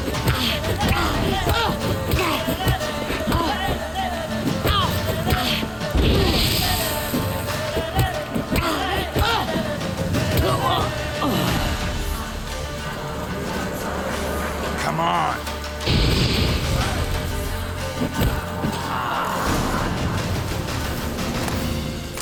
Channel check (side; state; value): both; identical; correlation 1.00